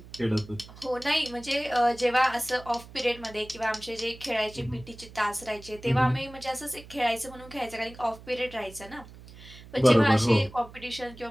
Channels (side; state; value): right; noise; hum, 18 dB below the sound